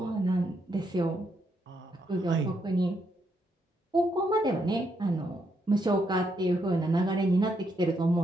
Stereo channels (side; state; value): both; normal; correlation 0.77